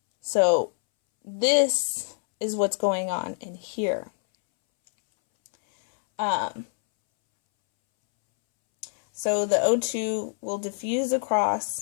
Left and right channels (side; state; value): right; silent; 61 dB below the other